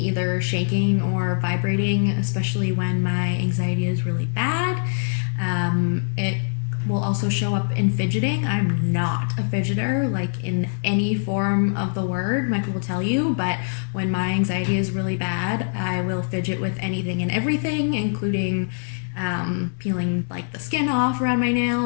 shaking or vibrating, especially when my anxiety is really bad. It will also show up in fidgeting. I'm not a fidgeter, like in any form of the word, Michael will tell you, but when my anxiety is really bad, I will fidget with anything and everything, including peeling like the skin off around my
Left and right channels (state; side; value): silent; right; 63 dB below the other